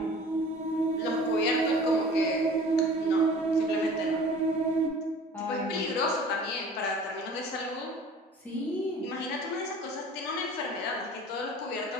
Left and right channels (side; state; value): both; normal; correlation 0.44